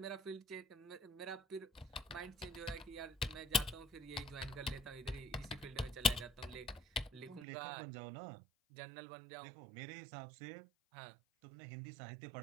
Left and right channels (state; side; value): drops out; left; at 7.5 s